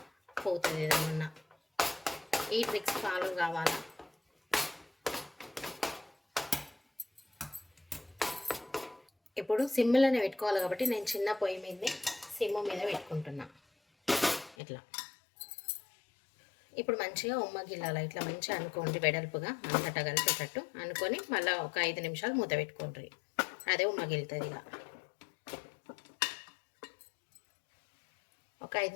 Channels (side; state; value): right; drops out; at 14.6 s